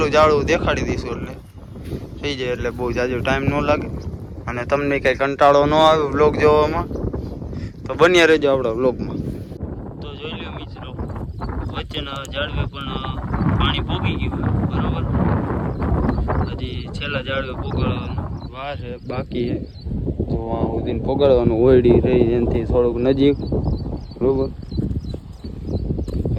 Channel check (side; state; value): both; identical; correlation 1.00